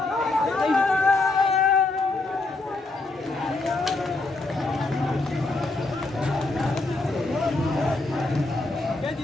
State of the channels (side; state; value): right; quieter; 3.1 dB